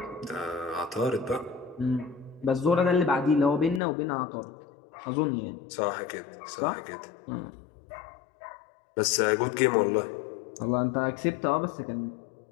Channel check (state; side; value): drops out; right; at 3.8 s